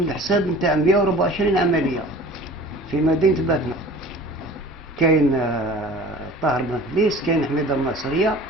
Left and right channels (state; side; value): normal; both; correlation 0.43